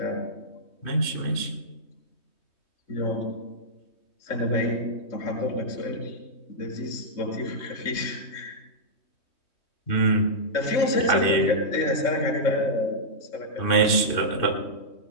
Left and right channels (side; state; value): right; late; 3.2 ms